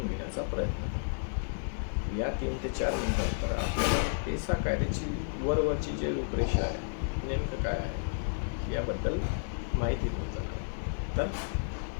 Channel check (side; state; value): right; silent; digital silence